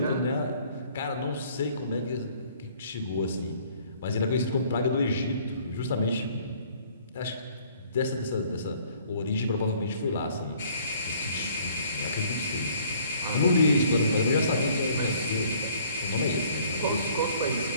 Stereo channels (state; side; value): inverted; both; correlation -0.58